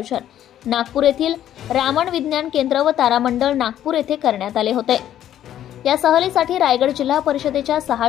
नागपूर येथील रामन विज्ञान केंद्र व तारामंडळ नागपूर येथे करण्यात आले होते। या सहलीसाठी रायगड जिल्हा परिषदेच्या 6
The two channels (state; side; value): quieter; right; 11.4 dB